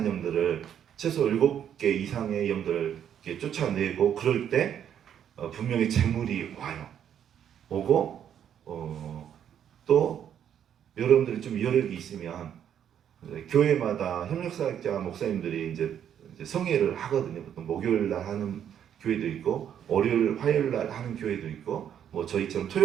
영들을 최소 7개 이상의 영들을 이렇게 쫓아내고 그럴 때 분명히 재물이 와요. 오고 또 여러분들이 좀 여력이 있으면 교회마다 협력사역자 목사님들이 이제 성회를 하거든요. 보통 목요일날 하는 교회도 있고 월요일, 화요일날 하는 교회도 있고 뭐 저희처럼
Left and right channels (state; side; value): quieter; left; 9.3 dB